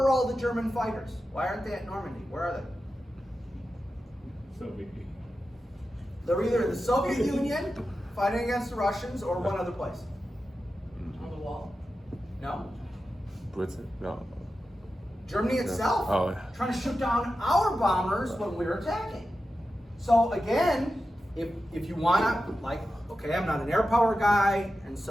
all the German fighters? Why aren't they at Normandy? Where are they? Soviet. They're either in the Soviet Union fighting against the Russians or one other place. On the wall. No? Britain? No. Germany itself Oh, yeah. trying to shoot down our bombers when we're attacking. So again, if you wanna, like, okay, I'm not an air power guy, and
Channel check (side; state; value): both; normal; correlation 0.91